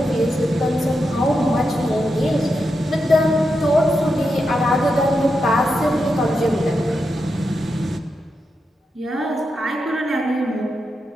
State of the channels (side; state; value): both; normal; correlation 0.86